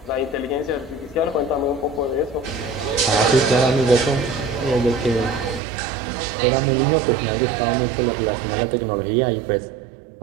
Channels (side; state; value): left; drops out; at 5.6 s